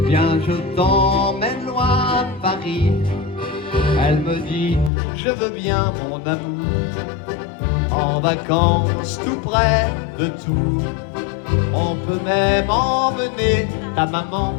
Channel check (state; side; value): drops out; right; at 4.9 s